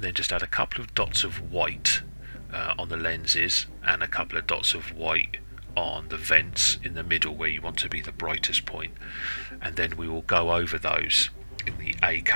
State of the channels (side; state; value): both; inverted; correlation -1.00